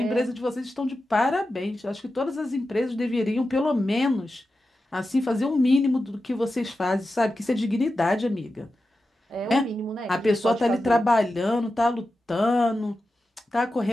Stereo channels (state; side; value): normal; both; correlation 0.92